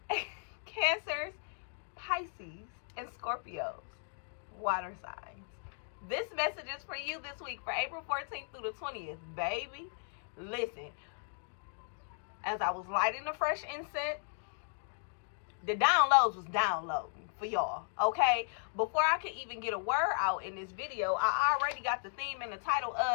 Cancers, Pisces, and Scorpios, water signs. This message is for you this week, for April 14th through the 20th, baby. Listen, as I was lighting the fresh incense, the downloads was downloading for y'all, okay? Before I could even get a word out in this video, I already got the theme and the title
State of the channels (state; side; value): silent; right; digital silence